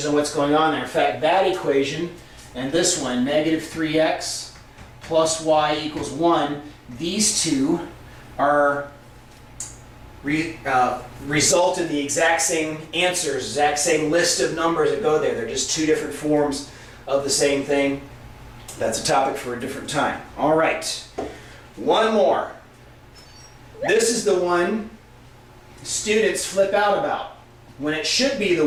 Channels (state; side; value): identical; both; correlation 1.00